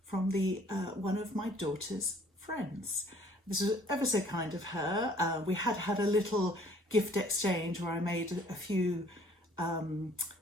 from one of my daughter's friends. This was ever so kind of her. We had a little gift exchange where I made a few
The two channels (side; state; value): both; normal; correlation 0.57